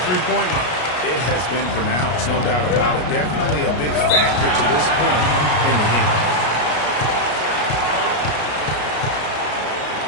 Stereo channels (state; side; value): late; right; 33 ms